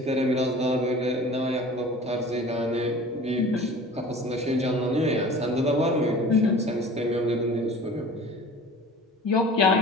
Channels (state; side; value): normal; both; correlation 0.42